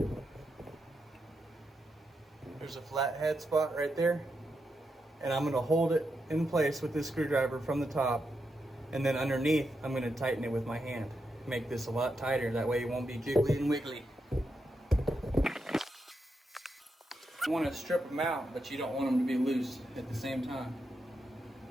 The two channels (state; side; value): normal; both; correlation 0.84